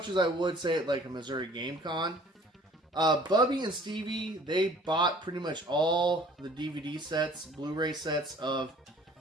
as I would say at like a Missouri Game Con. Bubby and Stevie, they bought pretty much all the DVD sets, Blu-ray sets of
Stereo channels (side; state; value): both; normal; correlation 0.52